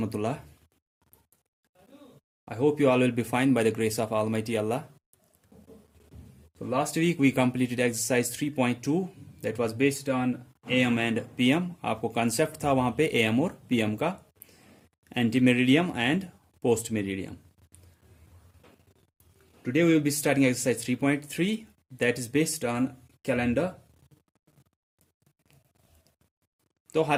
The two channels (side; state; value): both; identical; correlation 1.00